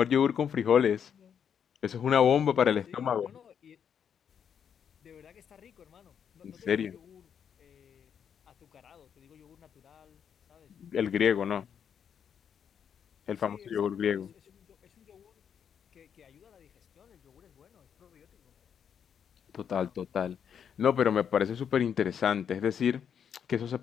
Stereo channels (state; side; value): quieter; right; 7.9 dB